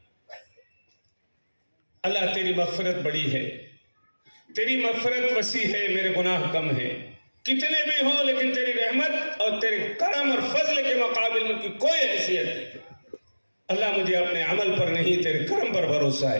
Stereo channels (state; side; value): inverted; both; correlation -1.00